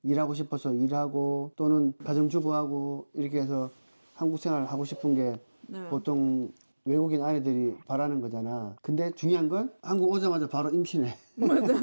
일하고 싶어서 일하고 또는 가정주부하고 이렇게 해서 한국 생활을 하고 싶은 게 네. 보통 외국인 아내들이 바라는 거잖아. 근데 중요한 건 한국 오자마자 바로 임신해.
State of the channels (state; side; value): inverted; both; correlation -1.00